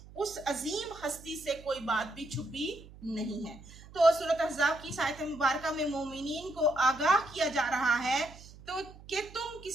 اس عظیم ہستی سے کوئی بات بھی چھپی نہیں ہے۔ تو سورۃ احزاب کی اس آیت مبارکہ میں مومنین کو آگاہ کیا جا رہا ہے تو کہ تم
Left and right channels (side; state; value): right; noise; hum, 19 dB below the sound